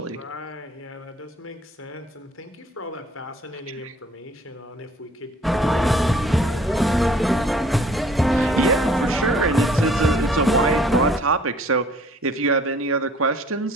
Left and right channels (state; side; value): normal; both; correlation 0.57